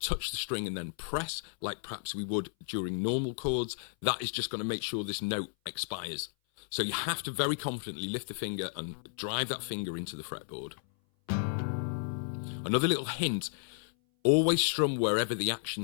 the string and then press like perhaps we would during normal chords. That is just going to make sure this note expires. So you have to very confidently lift the finger and drive that finger into the fretboard. Another little hint, always strum wherever the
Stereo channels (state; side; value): silent; right; 56 dB below the other